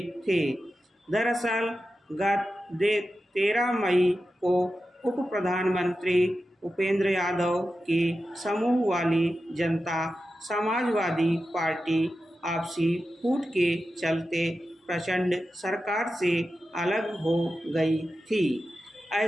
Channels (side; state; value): both; normal; correlation 0.92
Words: थे। दरअसल गत 13 मई को उप प्रधानमंत्री उपेंद्र यादव की समूह वाली जनता समाजवादी पार्टी आपसी फूट के चलते प्रचंड सरकार से अलग हो गई थी।